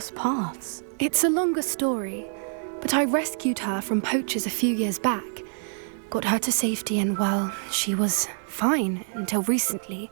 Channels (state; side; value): silent; left; 61 dB below the other